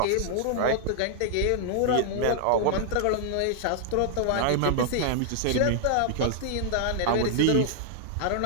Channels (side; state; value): both; different; correlation -0.01